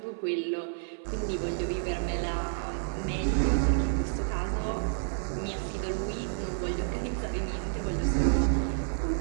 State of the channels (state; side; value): silent; left; 55 dB below the other